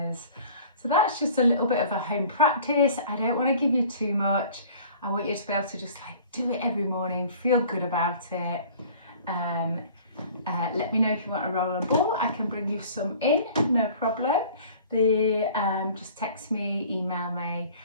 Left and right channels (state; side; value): inverted; both; correlation -0.48